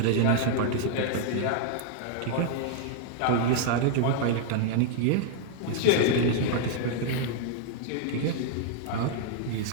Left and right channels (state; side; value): different; both; correlation 0.00